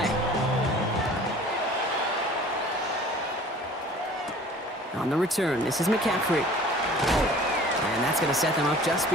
On the return, this is McCaffrey. And that's going to set them up just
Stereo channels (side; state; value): both; normal; correlation 0.47